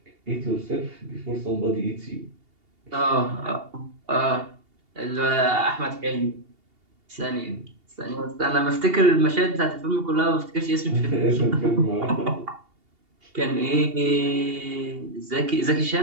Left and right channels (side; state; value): left; late; 2.8 ms